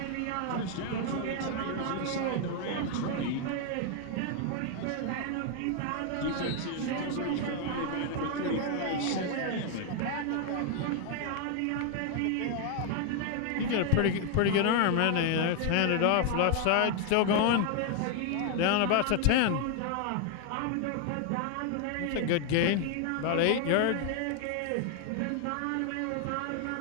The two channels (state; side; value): different; both; correlation 0.00